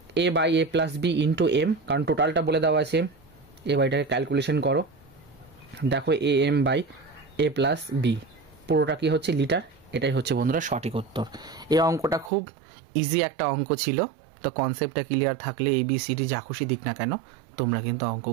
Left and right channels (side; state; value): left; drops out; at 12.3 s